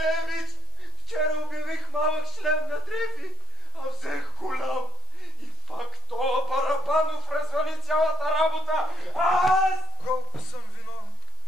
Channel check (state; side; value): normal; both; correlation 0.47